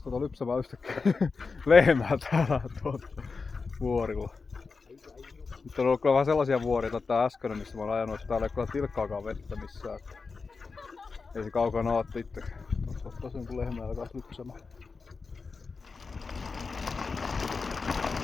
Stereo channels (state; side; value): quieter; right; 4.6 dB